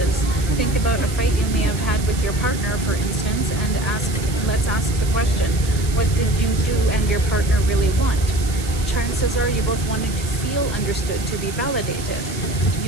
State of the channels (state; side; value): noise; right; hiss, 12 dB below the sound